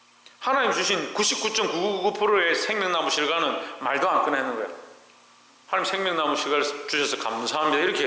하나님 주신 99.999%의 생명나무 실과는 말도 안 꺼내는 거예요. 하나님 생명나무 실과를 주셔서 감사합니다 이렇게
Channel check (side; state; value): both; identical; correlation 1.00